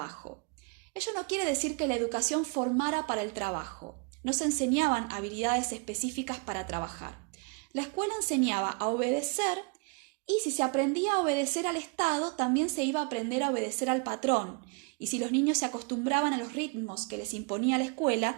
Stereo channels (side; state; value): left; quieter; 31.7 dB